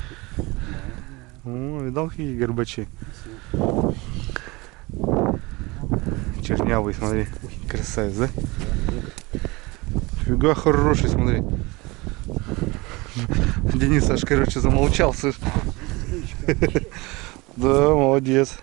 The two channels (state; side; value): quieter; left; 23.8 dB